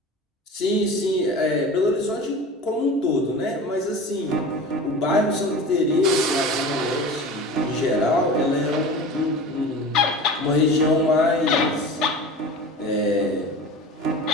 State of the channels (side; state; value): both; normal; correlation 0.35